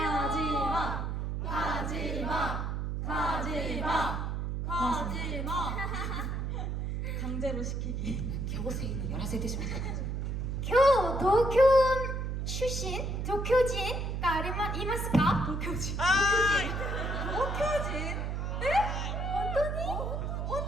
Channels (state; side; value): noise; right; hum, 2 dB below the sound